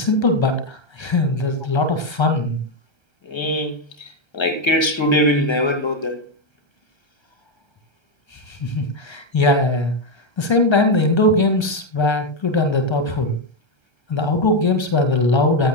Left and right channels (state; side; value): late; right; 1.3 ms